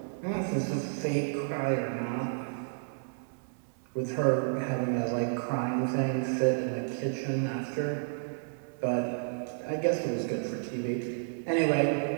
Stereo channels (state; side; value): silent; left; 57 dB below the other